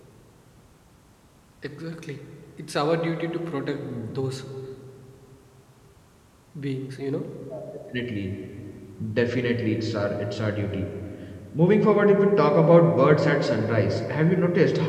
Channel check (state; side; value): identical; both; correlation 1.00